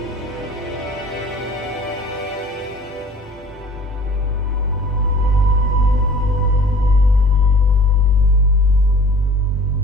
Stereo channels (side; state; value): both; normal; correlation 0.47